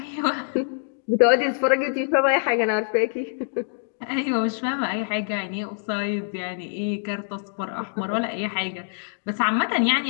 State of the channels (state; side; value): silent; right; digital silence